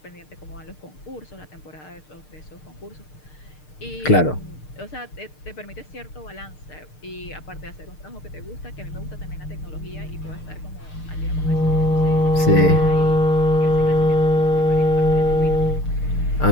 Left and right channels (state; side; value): late; right; 6.6 ms